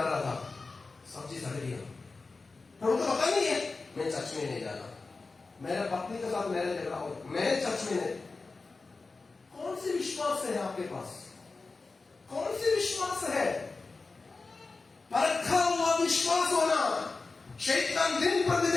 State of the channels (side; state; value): right; quieter; 3.9 dB